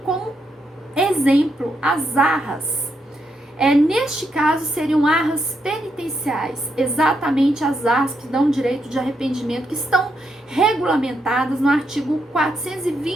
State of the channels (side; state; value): both; normal; correlation 0.80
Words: como exemplo, as arras. Neste caso, seriam arras penitenciais, exatamente as arras que dão direito de arrependimento, que estão regulamentadas no artigo